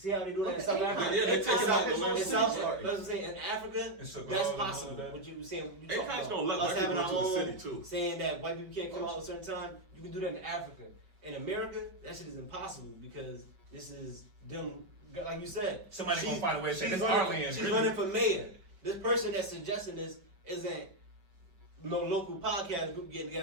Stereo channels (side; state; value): left; late; 5.8 ms